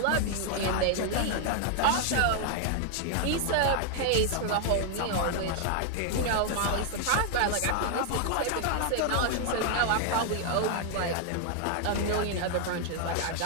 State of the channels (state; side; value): different; both; correlation 0.00